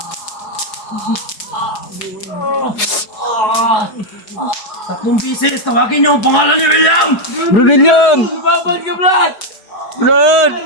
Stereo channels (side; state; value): right; late; 4.8 ms